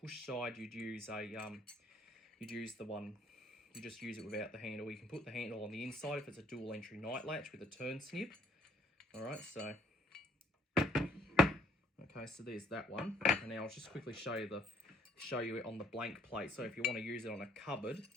side, you'd use the one. You just use it without the handle. You can put the handle on the inside if it's a dual entry night latch with a turn snip. All right, so okay, so there's that one. And now I'll just quickly show you it on the blank plate. So if you want to use it on a cupboard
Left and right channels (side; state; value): both; normal; correlation 0.64